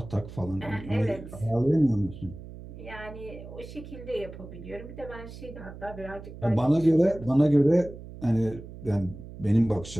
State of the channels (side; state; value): right; noise; hum, 14 dB below the sound